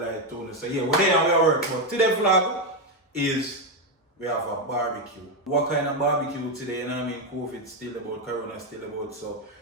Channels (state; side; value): normal; both; correlation 0.07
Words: too. So yeah, we're there and we are work. But today's vlog is we have a barbecue. What kind of barbecue today? You know what I mean? COVID still about, Corona still about, so